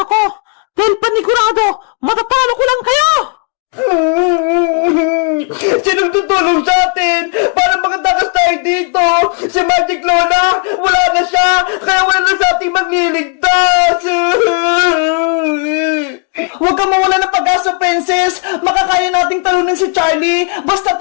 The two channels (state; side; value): quieter; right; 38.5 dB